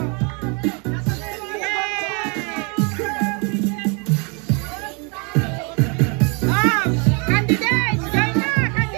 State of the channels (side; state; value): left; quieter; 33.7 dB